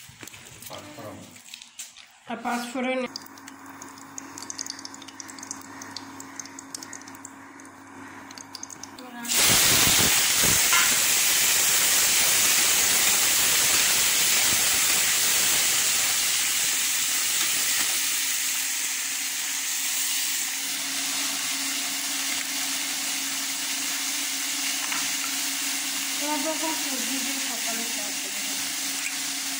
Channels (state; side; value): identical; both; correlation 1.00